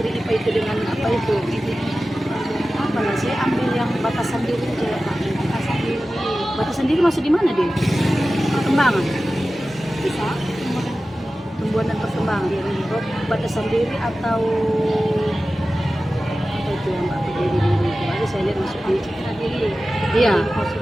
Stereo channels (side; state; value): both; normal; correlation 0.95